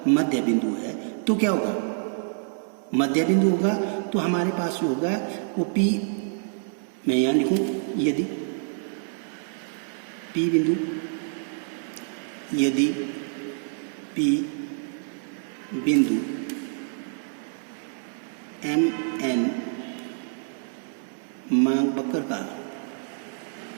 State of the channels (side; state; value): left; silent; digital silence